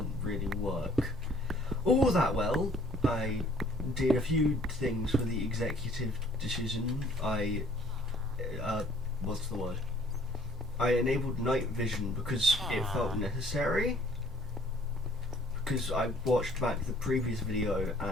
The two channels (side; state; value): both; normal; correlation 0.57